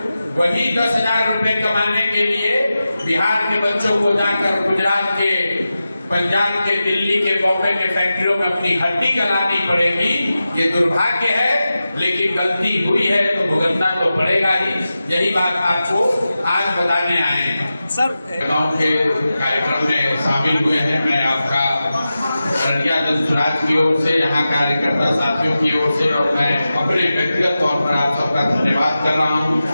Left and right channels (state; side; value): inverted; both; correlation -0.93